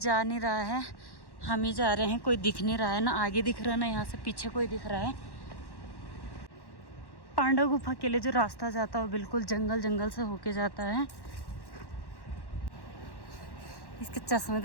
नहीं रहा है। हम ही जा रहे हैं, कोई दिख नहीं रहा है, ना आगे दिख रहा है ना यहाँ से पीछे कोई दिख रहा है। पांडव गुफा के लिए जो रास्ता जाता है वो बिल्कुल जंगल जंगल से होके जाता है। इसके चश्मे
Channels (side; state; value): right; late; 1.1 ms